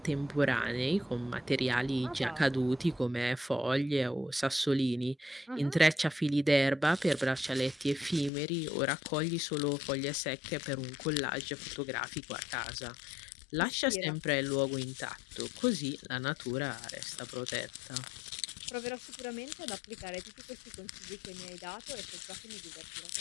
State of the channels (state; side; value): drops out; right; at 8.3 s